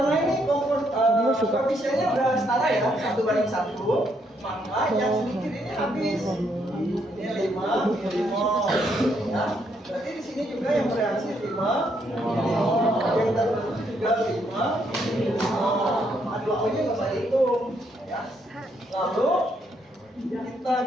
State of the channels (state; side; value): normal; both; correlation 0.74